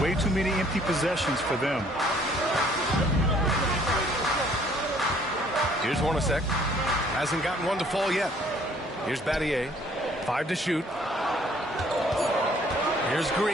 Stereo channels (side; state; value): both; normal; correlation 0.60